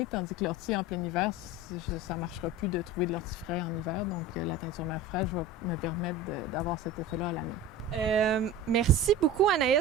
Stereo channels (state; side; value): normal; both; correlation 0.32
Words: tandis que l'ortie en plein hiver, ça ne marchera plus de trouver de l'ortie frais en hiver. Donc, la teinture mère fraîche va me permettre d'avoir cet effet-là à l'année. Merci beaucoup,